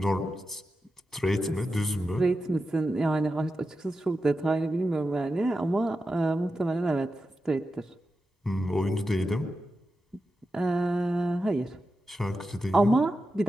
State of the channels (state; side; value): normal; both; correlation 0.90